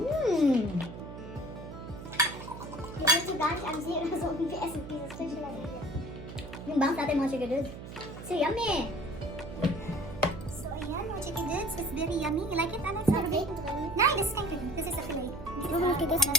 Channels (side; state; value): right; noise; hum, 11 dB below the sound